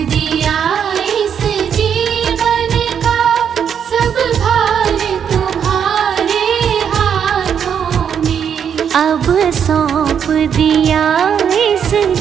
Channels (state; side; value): quieter; left; 8.0 dB